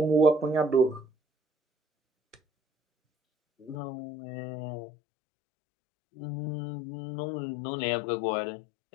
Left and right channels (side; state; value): right; drops out; at 3.8 s